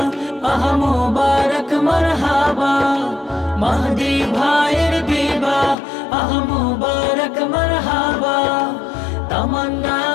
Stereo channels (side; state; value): right; drops out; at 5.8 s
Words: আহ মুবারক মারহাবা। মাহদি ভাইয়ের বিবাহ আহ মুবারক মারহাবা,